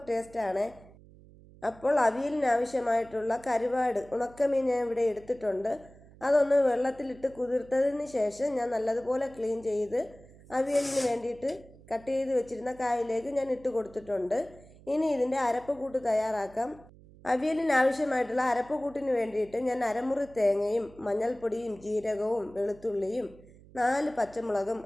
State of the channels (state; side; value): noise; right; hum, 23 dB below the sound